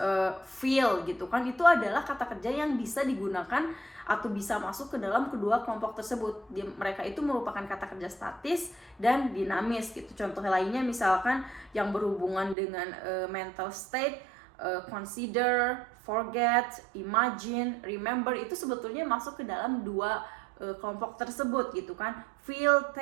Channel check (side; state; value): left; drops out; at 12.6 s